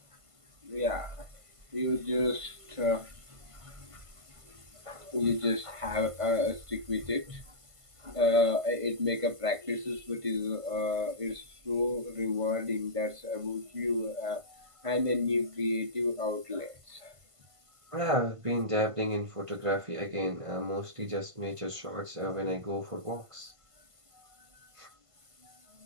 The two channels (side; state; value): left; late; 1.5 ms